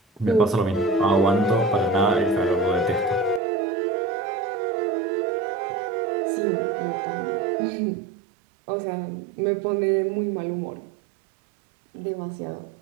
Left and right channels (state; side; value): drops out; left; at 3.4 s